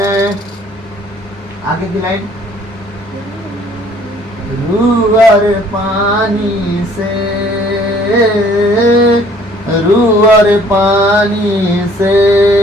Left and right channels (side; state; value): both; normal; correlation 0.58